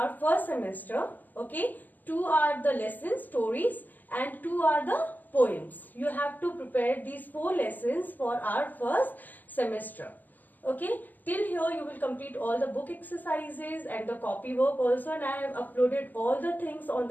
first semester. Okay, 2 are the lesson stories and 2 are the poems. You have to prepare these 4 lessons for our first semester. Okay, till here you will complete all the book exercises and the copy work also, and I have uploaded all the things on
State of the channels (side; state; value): right; late; 0.085 ms